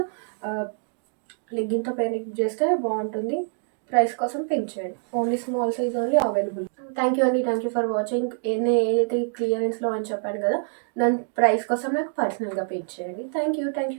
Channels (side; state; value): left; silent; 59 dB below the other